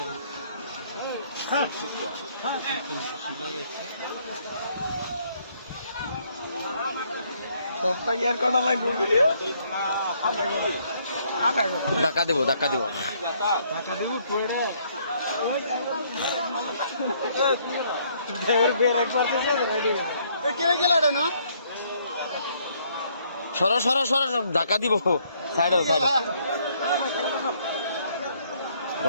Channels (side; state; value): both; inverted; correlation -0.67